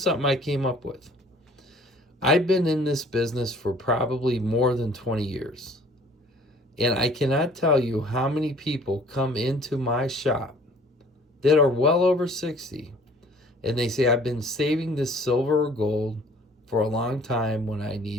I came up with. I've been in this business for probably more than 20 years. And I cannot tell you how many people come into my shop that are well over 60, and they say, I've been saving this silver or gold for a long time when I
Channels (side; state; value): both; normal; correlation 0.53